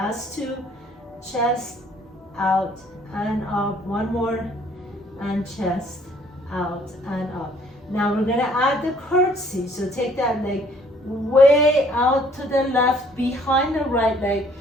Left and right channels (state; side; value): normal; both; correlation 0.60